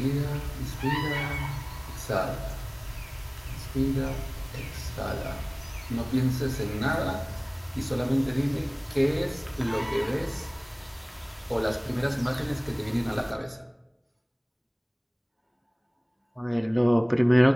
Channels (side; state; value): both; identical; correlation 1.00